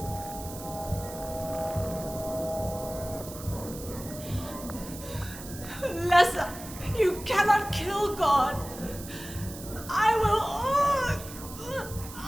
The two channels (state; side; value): noise; right; hiss, 13 dB below the sound